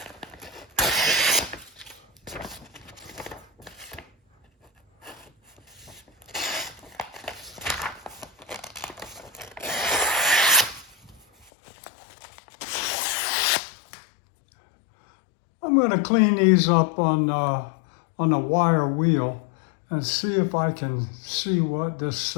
I'm going to clean these up on a wire wheel and see if I can see what this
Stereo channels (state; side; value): drops out; right; at 11.5 s